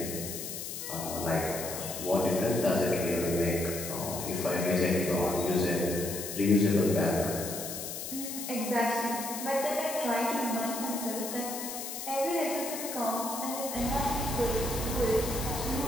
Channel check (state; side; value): noise; left; hiss, 7 dB below the sound